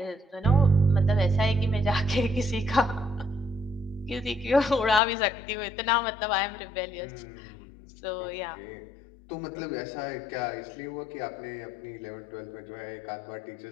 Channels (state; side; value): drops out; right; at 5.0 s